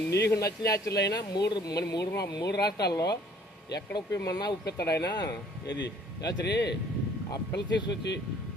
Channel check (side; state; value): both; normal; correlation 0.57